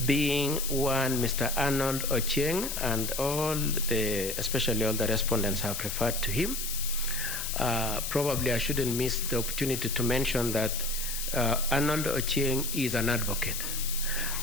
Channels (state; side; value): noise; left; hiss, 4 dB below the sound